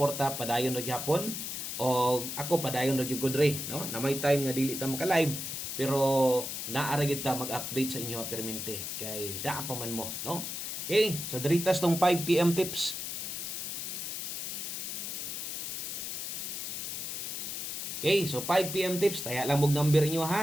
padayon ra gihapon. O ako padayon ra gyud ko dre, no? Na may time nga dili ta maka-live pero naara gyud ta mag-update sa inyo permente kay daa pa man mo, no? Okay, so diritas tong 5 PM tips. Okay, so 5 PM tips, taya lang mog number inyo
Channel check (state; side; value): noise; left; hiss, 4 dB below the sound